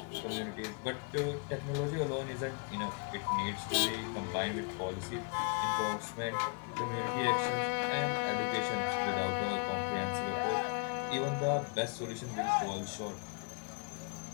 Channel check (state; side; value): quieter; right; 36.4 dB